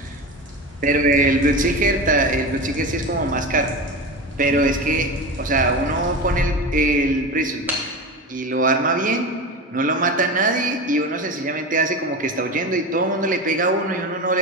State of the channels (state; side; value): normal; both; correlation 0.26